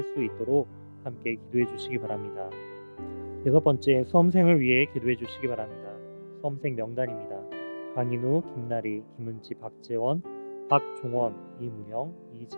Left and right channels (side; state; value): both; inverted; correlation -1.00